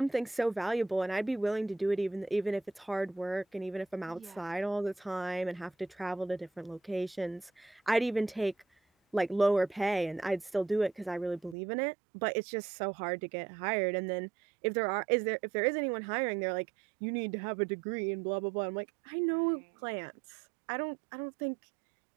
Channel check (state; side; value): drops out; left; at 11.6 s